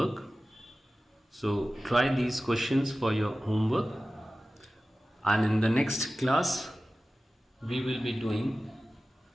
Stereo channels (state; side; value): normal; both; correlation 0.96